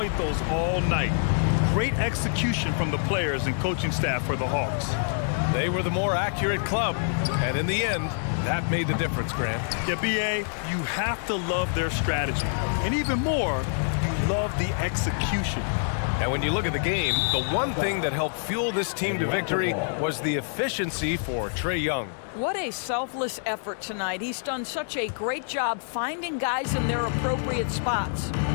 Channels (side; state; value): right; silent; digital silence